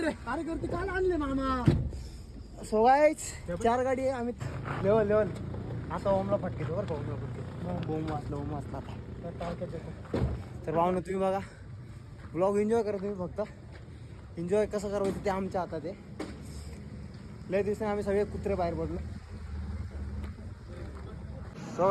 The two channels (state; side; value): identical; both; correlation 1.00